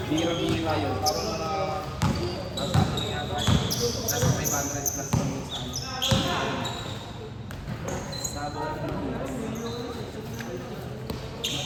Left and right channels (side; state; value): both; identical; correlation 1.00